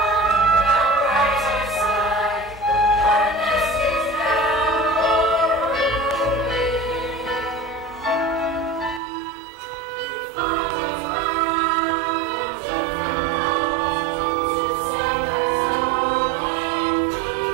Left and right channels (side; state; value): left; drops out; at 9.0 s